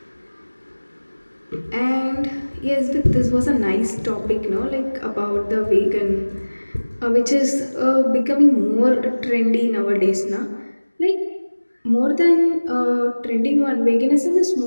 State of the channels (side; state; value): both; inverted; correlation -1.00